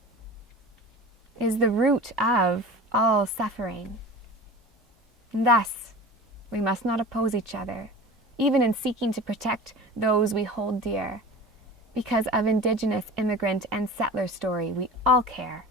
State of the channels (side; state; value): both; normal; correlation 0.36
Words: is the root of all suffering. And thus, we must not oppose each other, even in seeking to protect those we hold dear. Because of Indigenous immigrant and settler story, we all care.